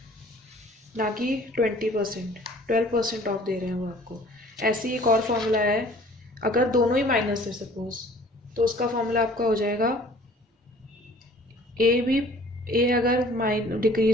ना कि 20%, 12% ऑफ दे रहे हैं वो आपको। ऐसे ही एक और फॉर्मूला है, अगर दोनों ही माइनस है सपोज, तो उसका फॉर्मूला आपका हो जाएगा ए अगर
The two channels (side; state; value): both; normal; correlation 0.52